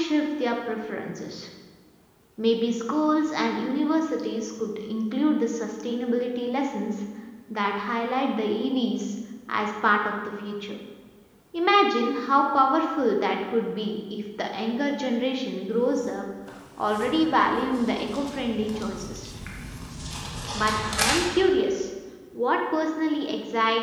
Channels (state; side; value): identical; both; correlation 1.00